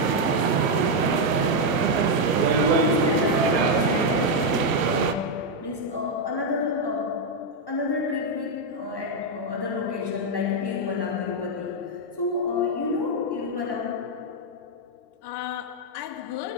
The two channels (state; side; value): late; right; 1.1 ms